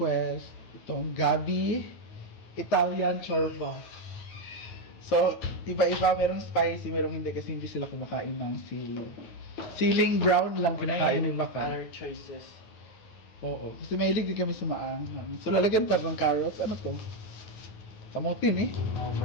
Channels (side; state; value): right; late; 9.4 ms